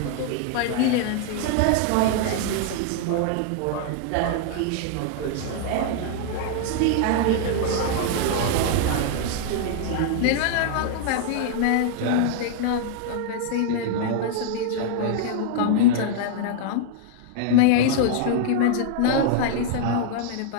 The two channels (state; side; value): different; both; correlation -0.01